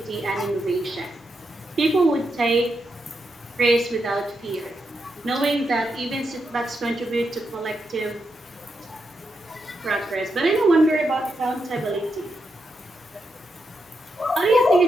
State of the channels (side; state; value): both; normal; correlation 0.84